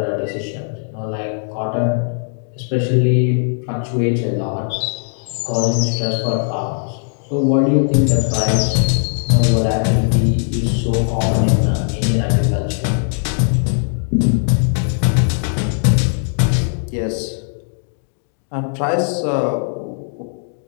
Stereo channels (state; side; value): silent; right; digital silence